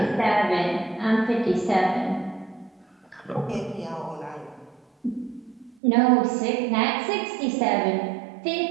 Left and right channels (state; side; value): drops out; left; at 5.8 s